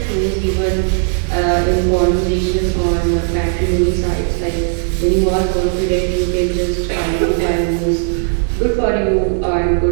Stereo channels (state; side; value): silent; left; 57 dB below the other